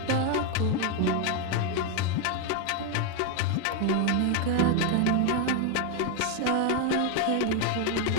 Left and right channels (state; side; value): different; both; correlation 0.01